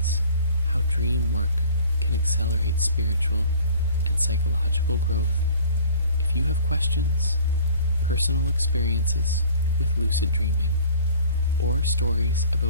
how dream work can accelerate spiritual and psychological growth. If you have questions, personal experiences with lucid dreaming, or stories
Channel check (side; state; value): both; inverted; correlation -0.48